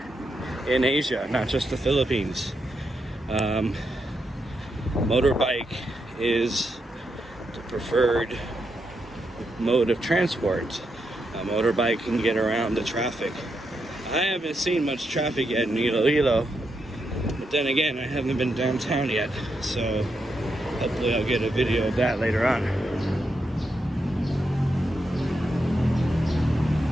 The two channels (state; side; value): normal; both; correlation 0.83